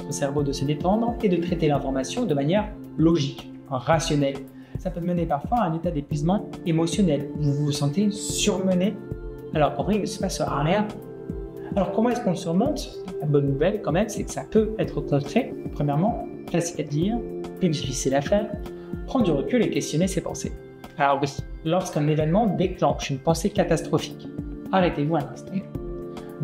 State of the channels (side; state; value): both; identical; correlation 1.00